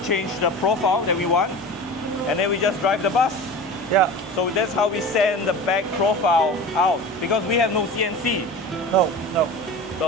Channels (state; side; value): normal; both; correlation 0.34